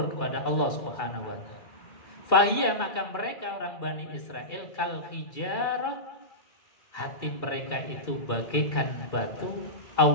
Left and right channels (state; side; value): late; right; 2.4 ms